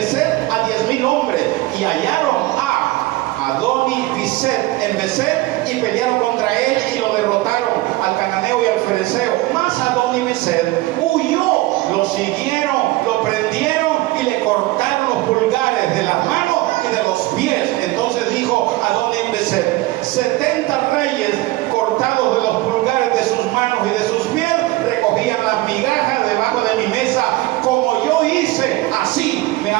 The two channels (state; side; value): quieter; left; 19.0 dB